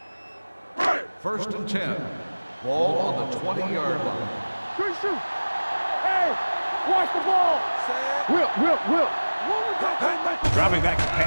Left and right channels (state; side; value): inverted; both; correlation -1.00